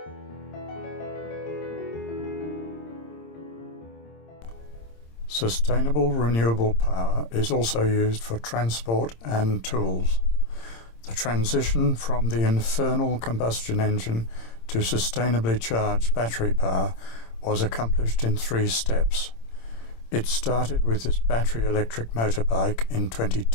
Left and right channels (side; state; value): right; late; 26 ms